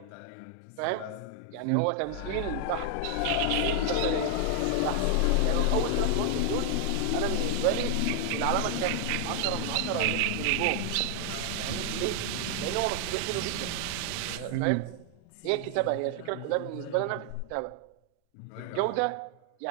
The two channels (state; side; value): different; both; correlation 0.00